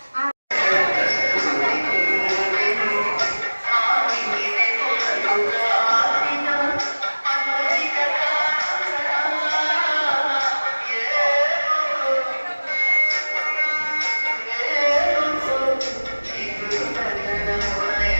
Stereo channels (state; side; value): inverted; both; correlation -1.00